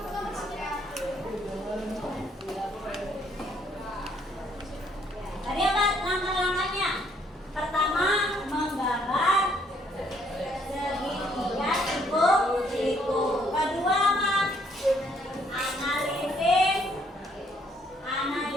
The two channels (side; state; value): both; normal; correlation 0.67